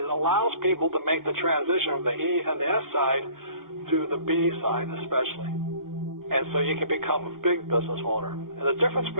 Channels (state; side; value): late; left; 0.92 ms